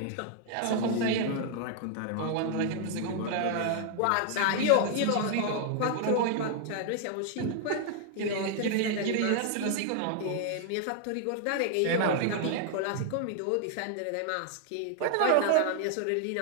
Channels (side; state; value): both; different; correlation 0.00